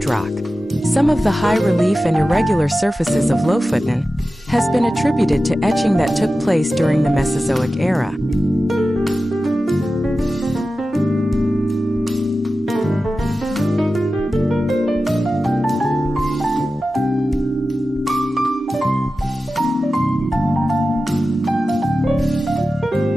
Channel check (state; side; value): normal; both; correlation 0.94